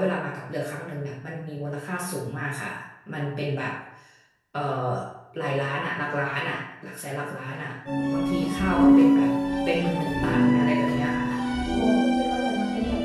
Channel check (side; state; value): both; identical; correlation 1.00